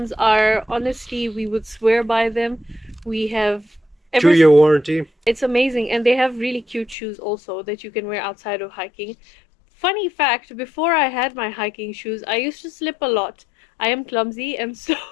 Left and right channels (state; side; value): drops out; right; at 7.0 s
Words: are, honestly, we would swear by them. We have ever 2-year warranty. It's amazing, and they have really cute shoes also that you can wear outside of hiking. Funny fact, before I had my hiking shoes, I used to slip a lot. I am clumsy, and so